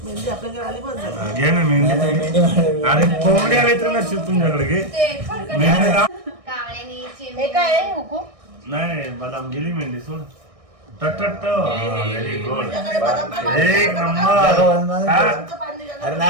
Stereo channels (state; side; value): late; left; 1.6 ms